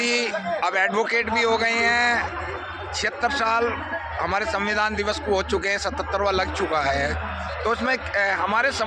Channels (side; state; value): both; identical; correlation 1.00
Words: अब एडवोकेट भी हो गए हैं। 76 साल हमारे संविधान दिवस को हो चुके हैं, 77वां लग चुका है। तो उसमें हमारे